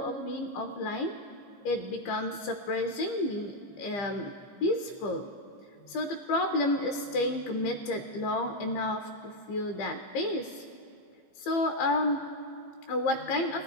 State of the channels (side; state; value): right; late; 15 ms